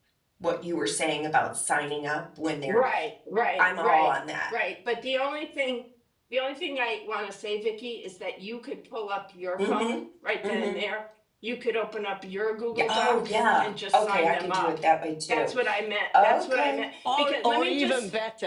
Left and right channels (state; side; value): identical; both; correlation 1.00